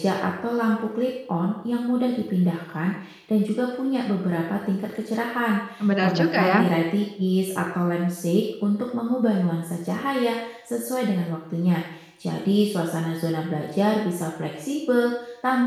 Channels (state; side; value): identical; both; correlation 1.00